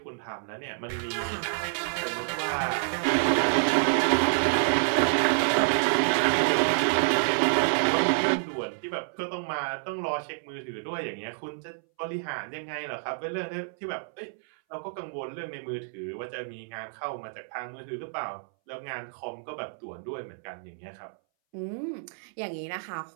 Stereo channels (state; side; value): silent; left; 59 dB below the other